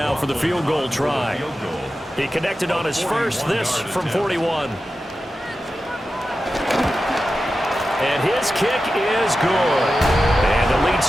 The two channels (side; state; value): both; normal; correlation 0.92